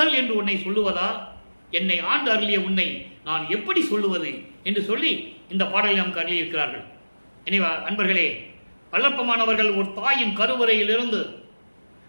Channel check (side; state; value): both; inverted; correlation -1.00